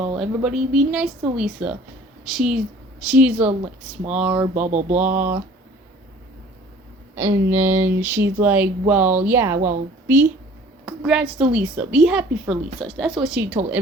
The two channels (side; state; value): both; normal; correlation 0.50